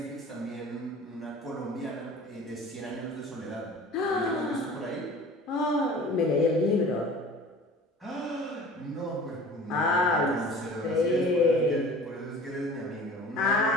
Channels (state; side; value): normal; both; correlation 0.43